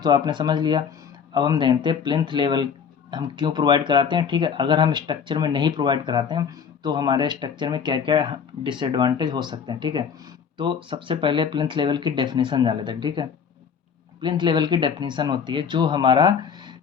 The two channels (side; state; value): right; quieter; 6.9 dB